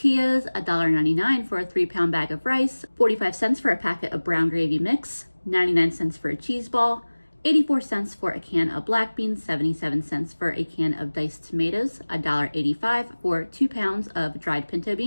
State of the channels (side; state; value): both; inverted; correlation -1.00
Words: $1.99 for a 3-pound bag of rice, 45 cents for a packet of brown gravy mix, 99 cents for a cheese ball, 84 cents for a can of black beans, 77 cents for a can of diced tomatoes, $1.85 for 2 pounds of dried pinto